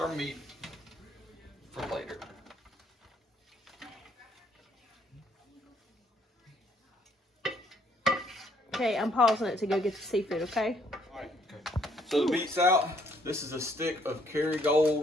meat for later. Okay, I'm pausing it to go get the seafood, okay? Alright, okay. So the meat's out. This is a stick of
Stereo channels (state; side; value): normal; both; correlation 0.67